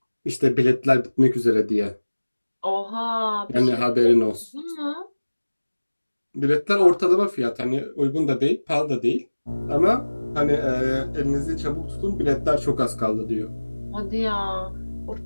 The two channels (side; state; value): both; inverted; correlation -1.00